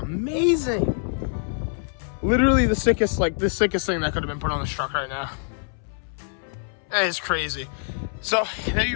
Literally the sickest thing that could have been put on this truck right now. That is crazy. So there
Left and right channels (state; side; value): silent; right; 62 dB below the other